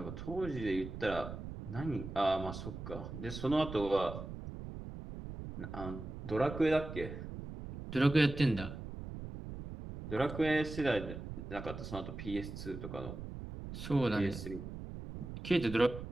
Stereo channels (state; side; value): noise; right; rumble, 9 dB below the sound